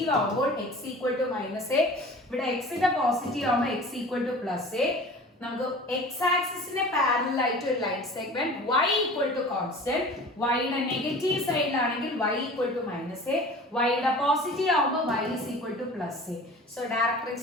ആവുമ്പോൾ x ഈക്വൽ ടു -a, ഇവിടെ x ന്റെ പോസിറ്റീവ് ആവുമ്പോൾ x ഈക്വൽ ടു +a. നമുക്ക് x ആക്സിസിന്റെ പാരലൽ ആയിട്ട് ഒരു line segment y equal to constant, y യുടെ നെഗറ്റീവ് സൈഡിലാണെങ്കിൽ y equal to -a, y യുടെ പോസിറ്റീവ് ആവുമ്പോൾ y is equal to +a. So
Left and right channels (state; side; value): normal; both; correlation 0.41